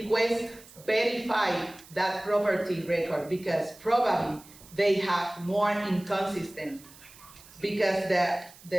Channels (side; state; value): right; noise; hiss, 22 dB below the sound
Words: verify that property record, because probably they have more inconsistent, because the